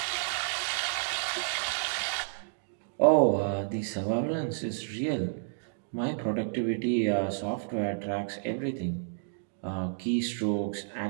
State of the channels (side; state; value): left; silent; digital silence